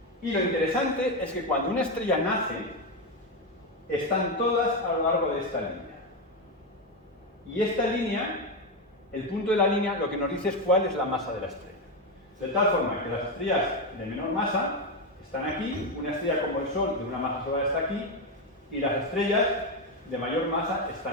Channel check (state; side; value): normal; both; correlation 0.09